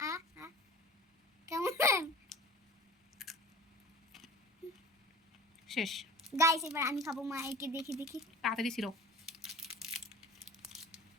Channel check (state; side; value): normal; both; correlation 0.40